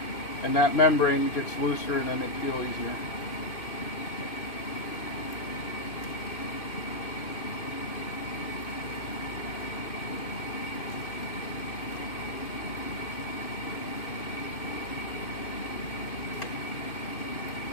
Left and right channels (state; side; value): late; right; 2.5 ms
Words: And that membrane gets looser and then they peel easier.